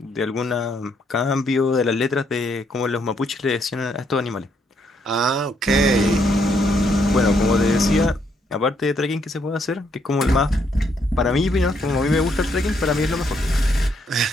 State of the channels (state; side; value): normal; both; correlation 0.73